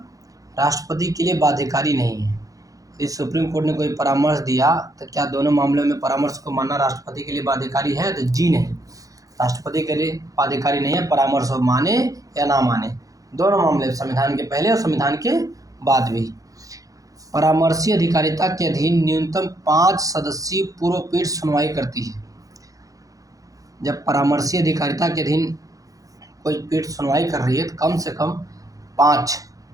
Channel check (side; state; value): left; late; 0.17 ms